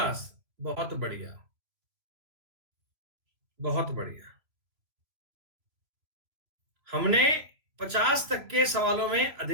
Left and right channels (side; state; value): left; late; 3.0 ms